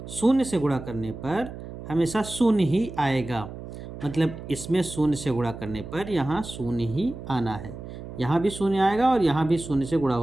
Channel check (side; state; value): right; noise; hum, 11 dB below the sound